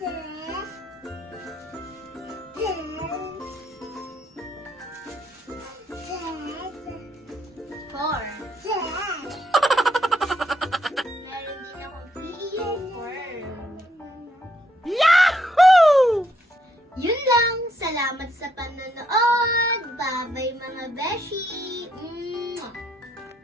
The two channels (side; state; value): both; normal; correlation 0.74